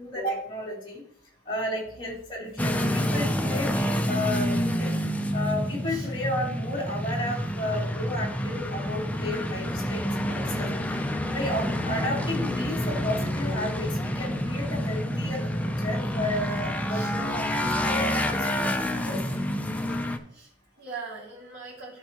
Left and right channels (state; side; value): normal; both; correlation 0.66